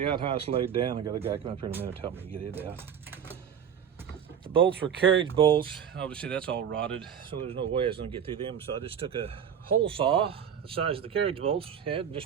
outhouse laid down. I got a guy come up here in a minute to help me get it out. The bolts were carriage bolts. Obviously that's all rotted, so there's no way I was gonna get through them. So I just took a hole saw, the size of the carriage bolts had, and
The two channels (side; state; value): left; quieter; 8.2 dB